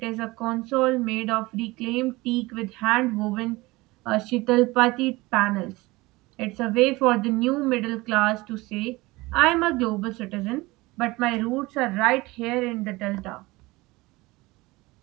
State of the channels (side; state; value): left; quieter; 21.4 dB